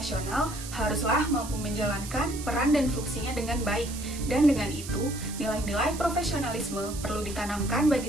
haruslah mampu menjalankan peran dan fungsinya dengan baik. Dan dengan itu, nilai-nilai profesionalisme perlu ditanamkan bagi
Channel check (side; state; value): right; noise; hiss, 11 dB below the sound